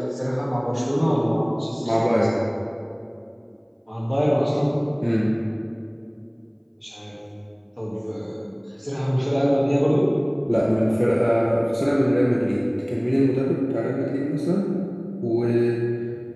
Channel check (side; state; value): both; identical; correlation 1.00